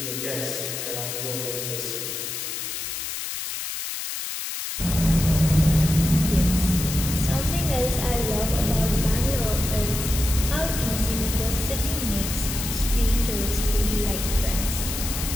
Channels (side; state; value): left; noise; hiss, 5 dB below the sound